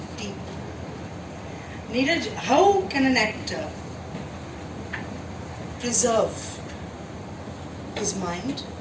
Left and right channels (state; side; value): identical; both; correlation 1.00